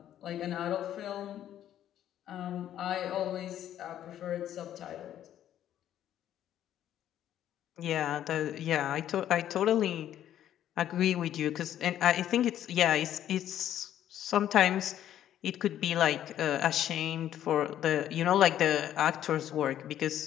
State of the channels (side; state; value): right; quieter; 11.2 dB